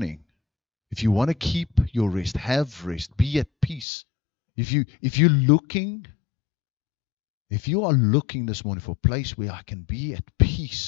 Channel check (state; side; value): drops out; right; at 3.9 s